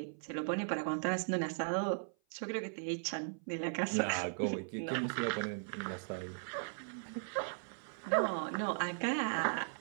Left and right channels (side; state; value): left; silent; 53 dB below the other